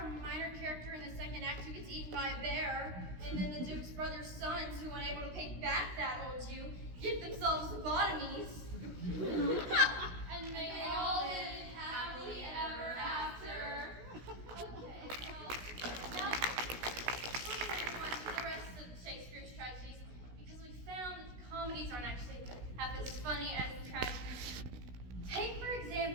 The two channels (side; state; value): left; late; 16 ms